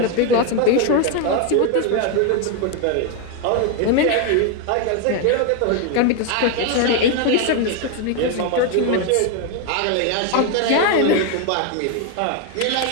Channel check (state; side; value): different; both; correlation 0.01